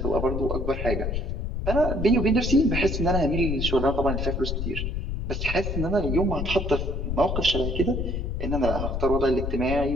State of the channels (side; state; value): left; noise; rumble, 2 dB below the sound